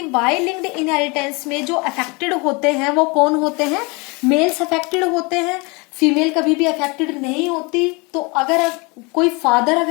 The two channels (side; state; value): right; quieter; 28.3 dB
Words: वाई लिंक्ड इनहेरिटेंस में जो अफेक्टेड होते हैं वो कौन होते हैं, मेल्स अफेक्टेड होते हैं, फीमेल कभी भी अफेक्टेड नहीं होती। तो अगर कोई फादर